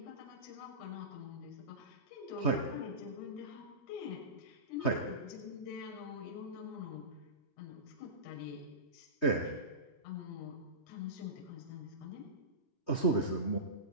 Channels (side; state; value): right; late; 3.2 ms